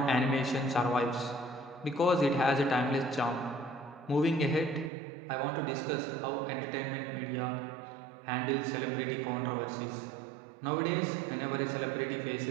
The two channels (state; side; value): drops out; left; at 4.9 s